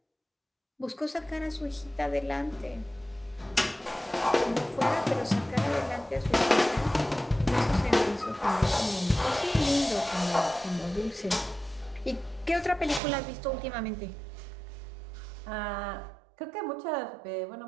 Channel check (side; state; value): left; drops out; at 13.0 s